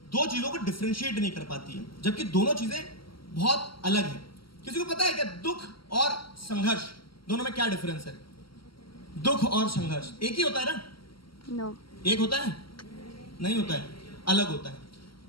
दो चीजों को डिफरेंशिएट नहीं कर पाती है, जबकि दोनों चीजें बहुत अलग हैं। किसी को पता है क्या दुख और संघर्ष दोनों में क्या डिफरेंस है? दुख और संघर्ष एक ही होता है ना? नो, एक होता है? नहीं होता है, अलग होता है।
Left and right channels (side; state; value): right; late; 0.74 ms